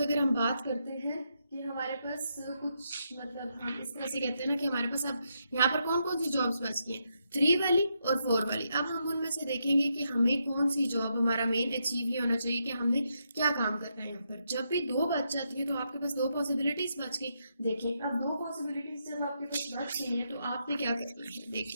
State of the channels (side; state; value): both; inverted; correlation -0.81